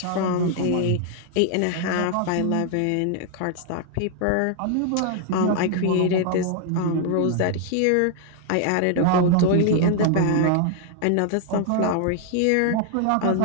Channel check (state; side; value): different; both; correlation 0.00